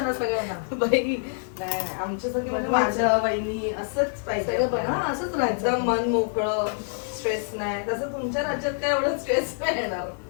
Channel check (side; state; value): right; silent; digital silence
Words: सगळ्यांना. बाई नाही, आमच्यासाठी म्हणजे माझ्या वहिनी असंच पाहिजे. सगळं बघ, हा, असंच राहायचं. एकदम मन मोकळं, स्ट्रेस नाही. तसं तुमच्या राज्यात काय एवढं स्ट्रेस नाही येणार.